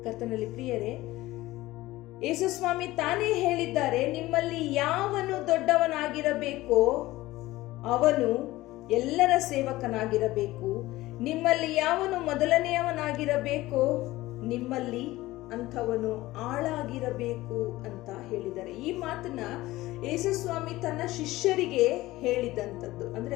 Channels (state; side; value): quieter; right; 17.9 dB